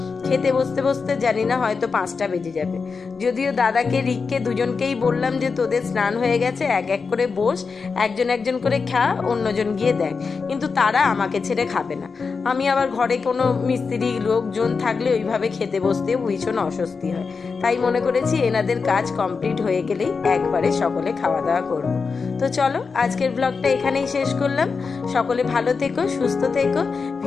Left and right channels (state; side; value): quieter; right; 5.0 dB